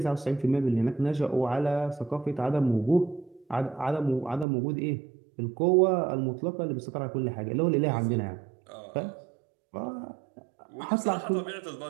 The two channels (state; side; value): drops out; left; at 4.5 s